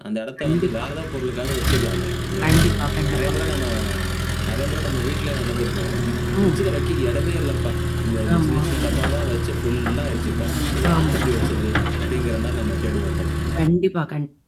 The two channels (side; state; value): both; identical; correlation 1.00